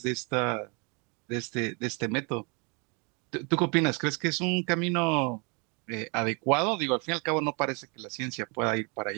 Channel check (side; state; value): left; quieter; 32.4 dB